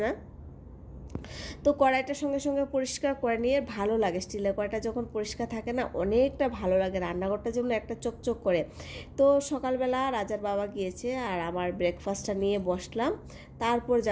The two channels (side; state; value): both; identical; correlation 1.00